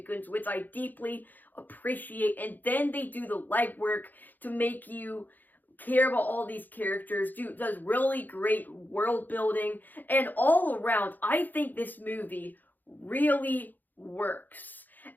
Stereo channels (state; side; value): late; right; 0.086 ms